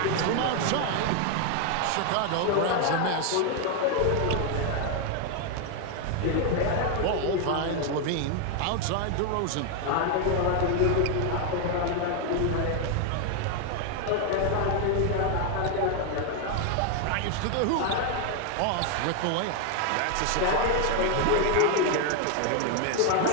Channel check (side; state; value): both; different; correlation 0.01